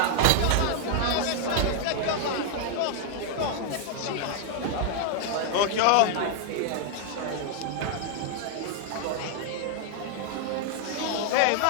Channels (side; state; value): both; different; correlation 0.00